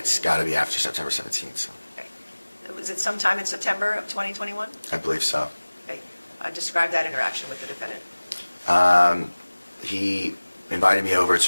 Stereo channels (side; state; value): both; inverted; correlation -1.00